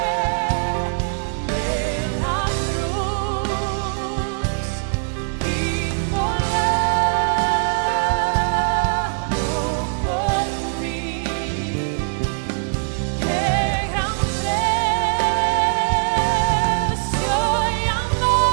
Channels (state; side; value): silent; left; digital silence